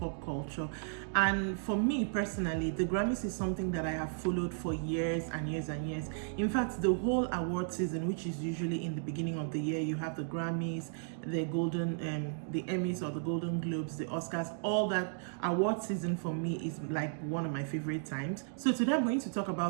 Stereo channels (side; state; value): left; silent; digital silence